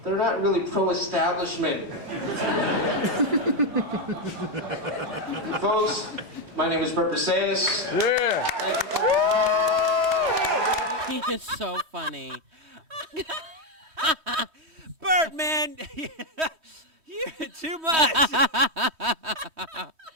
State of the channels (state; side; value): late; left; 3.1 ms